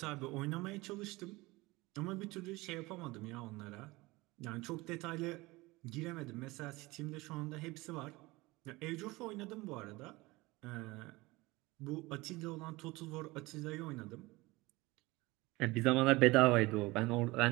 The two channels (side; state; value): left; quieter; 21.6 dB